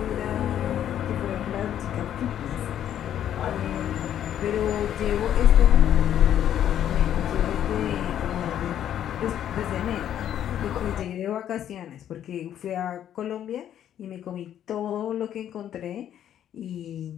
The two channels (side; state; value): right; quieter; 10.5 dB